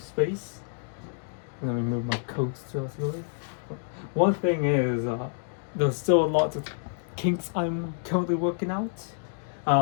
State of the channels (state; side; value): silent; right; digital silence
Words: space. Let me move my coats to us. One thing is, there's still a lot of kinks I'm currently working out.